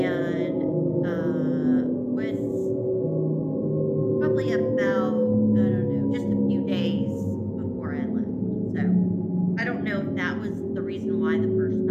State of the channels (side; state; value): both; identical; correlation 1.00